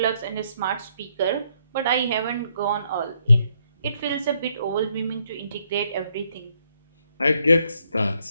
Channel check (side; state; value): both; inverted; correlation -0.73